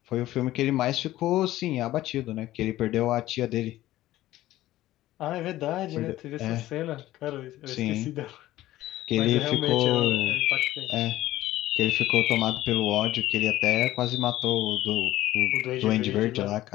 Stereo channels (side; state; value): right; quieter; 15.2 dB